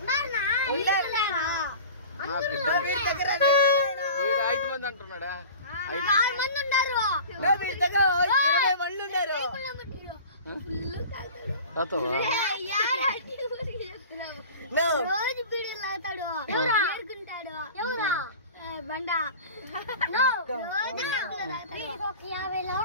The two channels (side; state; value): both; inverted; correlation -0.38